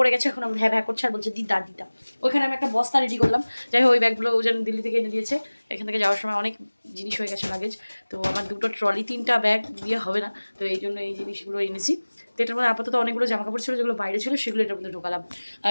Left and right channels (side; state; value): both; inverted; correlation -1.00